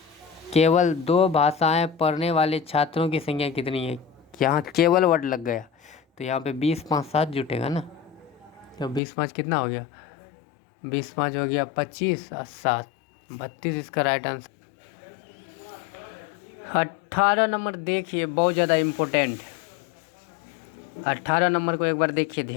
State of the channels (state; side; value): drops out; right; at 9.0 s